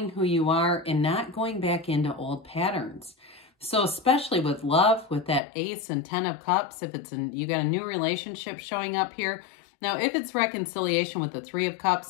who you are, and not going back into old patterns. So especially with love, with that Ace and 10 of Cups, if it's you got a new relationship showing up here. Now, if it's reconciliation with the Three of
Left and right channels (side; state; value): right; drops out; at 5.4 s